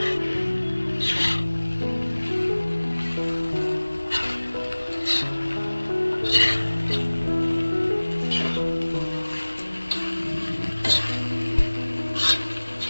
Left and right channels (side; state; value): both; inverted; correlation -1.00